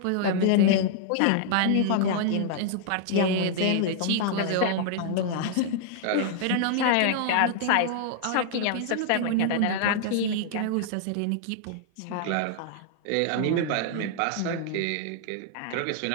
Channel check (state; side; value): different; both; correlation -0.01